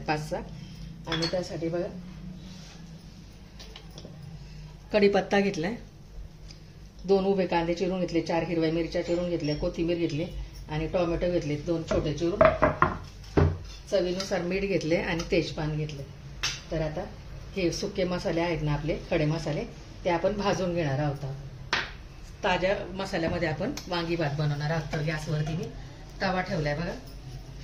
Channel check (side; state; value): both; identical; correlation 1.00